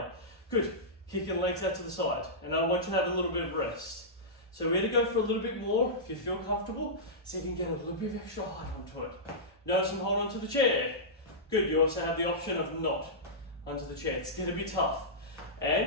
Good. Kicking legs out to the side. And I want you to have a little bit of rest. So we're going to go for a little bit more if you feel comfortable, so you can get a little bit of extra height onto it. Notice I'm holding onto the chair. Good, you also have the option of not onto the chair. It's going to be tough.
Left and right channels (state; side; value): normal; both; correlation -0.14